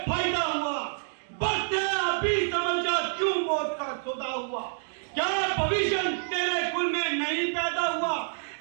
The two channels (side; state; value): left; silent; digital silence